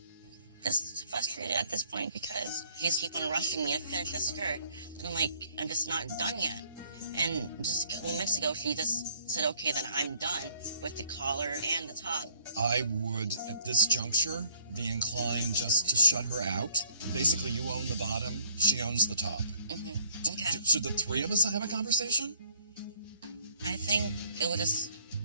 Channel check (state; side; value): inverted; both; correlation -0.63